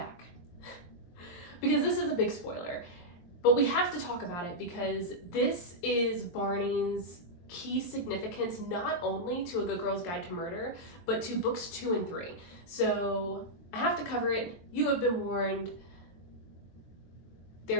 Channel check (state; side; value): late; right; 23 ms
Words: Because this is a big spoiler, but we have to talk about it because this is Barney's key significance, not only to A Good Girl's Guide to Murder, but to books 2 and 3. So I have to cover it. You have been warned.